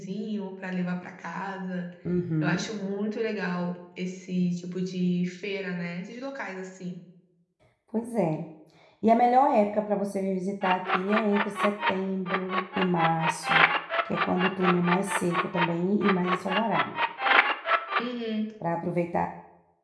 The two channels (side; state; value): both; identical; correlation 1.00